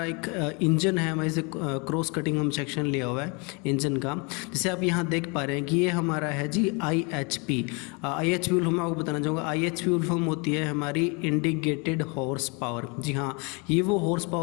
एक इंजन है, हमारे से क्रॉस कटिंग हम सेक्शन लिया हुआ है इंजन का। जैसे आप यहाँ देख पा रहे हैं कि ये हमारा है जी IHP। IHP फुल फॉर्म आपको बताना चाहूँगा। IHP फुल फॉर्म होती है हमारी इंडिकेटेड हॉर्स पावर। जी हाँ, ये वो हॉर्स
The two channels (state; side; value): quieter; right; 31.4 dB